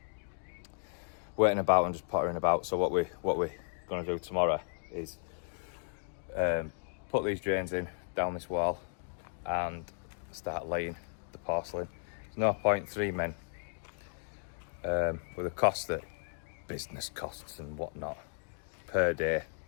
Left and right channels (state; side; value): silent; right; digital silence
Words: Waiting about and just pottering about. So what we're gonna do tomorrow is put these drains in down this wall and start laying the porcelain. There's no point 3 men with the cost that business costs and whatnot per day,